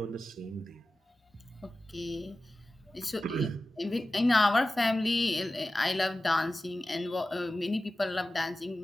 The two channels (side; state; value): both; normal; correlation 0.95